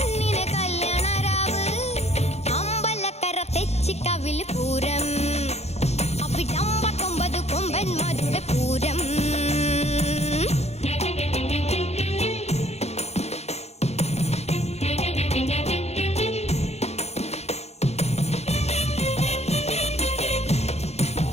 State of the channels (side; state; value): right; late; 0.31 ms